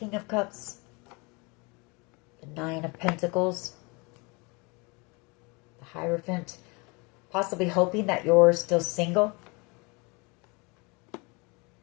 of Cups, the Nine of Pentacles, the Hierophant, possibly hoping that you're still single.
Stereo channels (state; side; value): quieter; right; 28.9 dB